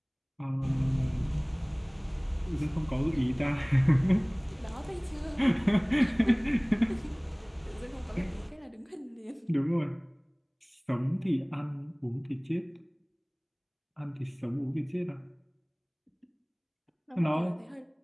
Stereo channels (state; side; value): identical; both; correlation 1.00